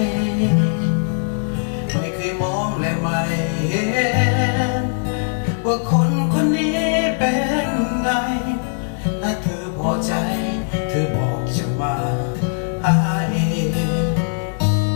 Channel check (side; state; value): right; silent; digital silence